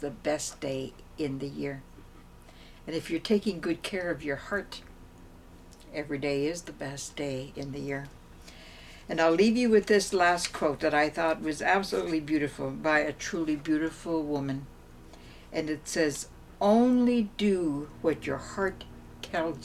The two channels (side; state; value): both; identical; correlation 1.00